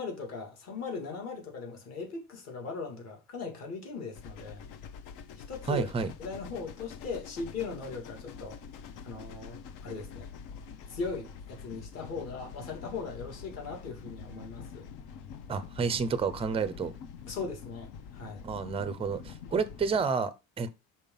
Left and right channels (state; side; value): normal; both; correlation 0.36